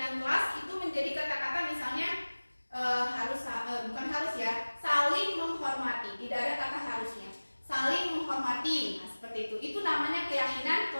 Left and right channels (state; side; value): inverted; both; correlation -1.00